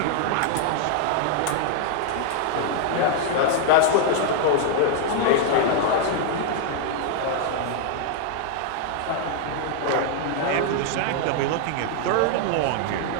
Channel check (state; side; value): different; both; correlation 0.00